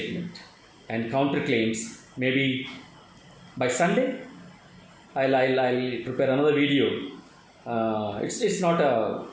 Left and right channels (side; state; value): both; identical; correlation 1.00